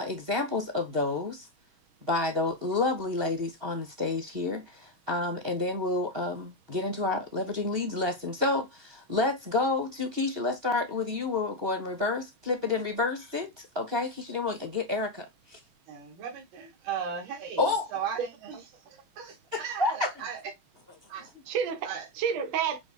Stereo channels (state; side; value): late; left; 6.3 ms